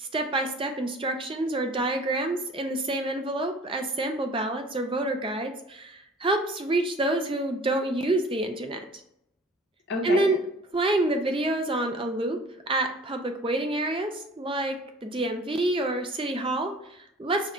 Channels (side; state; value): both; normal; correlation 0.47